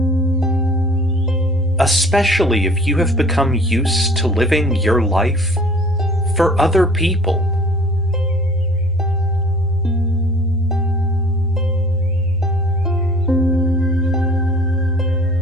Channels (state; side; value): normal; both; correlation 0.49